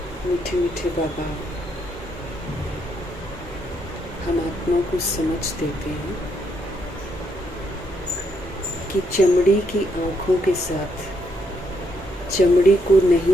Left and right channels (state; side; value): normal; both; correlation 0.76